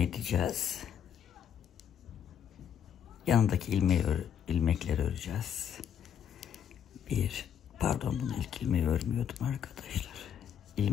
Yanındaki ilmekleri öreceğiz. Pardon, bunu ilk ilmeği örmüyordum arkadaşlar.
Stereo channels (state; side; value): quieter; right; 8.8 dB